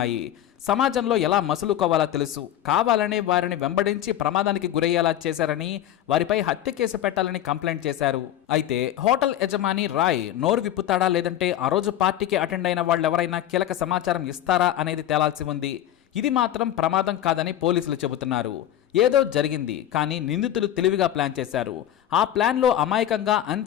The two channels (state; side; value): quieter; right; 11.9 dB